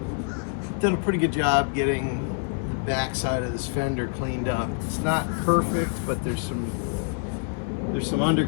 done a pretty good job getting the back side of this fender cleaned up. It's not perfect, but there's some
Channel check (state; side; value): quieter; right; 38.1 dB